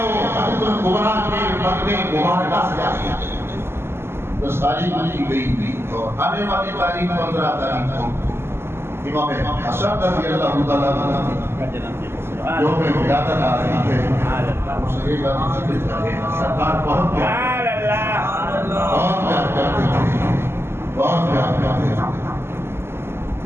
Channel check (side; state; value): left; late; 0.12 ms